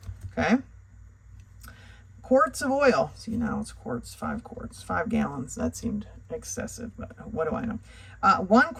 Okay. Quarts of oil. See, now it's quarts, 5 quarts, 5 gallons. That seemed excessive, but what do I know? 1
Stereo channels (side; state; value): both; identical; correlation 1.00